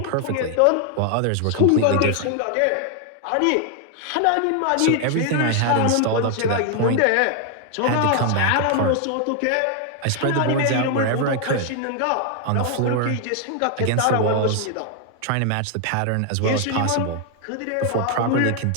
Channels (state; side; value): different; both; correlation 0.00